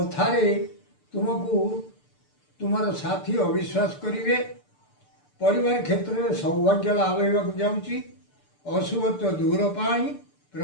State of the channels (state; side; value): late; right; 6.8 ms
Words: ତୁମକୁ ତୁମର ସାଥୀ ଅବିଶ୍ୱାସ କରିବେ। ପରିବାର କ୍ଷେତ୍ରରେ ସୌଭାଗ୍ୟ ଲାଭ ହେବାକୁ ଯାଉଛି। ଅଶୁଭତ୍ୱ ଦୂର ପାଇଁ